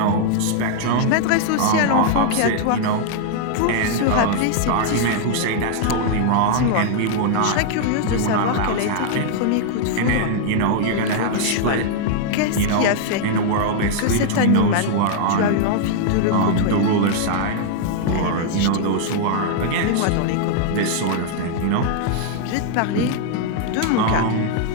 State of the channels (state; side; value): different; both; correlation -0.01